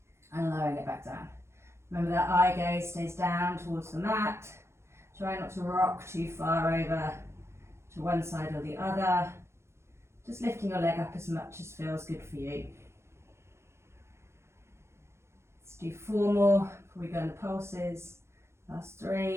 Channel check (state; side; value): late; left; 0.13 ms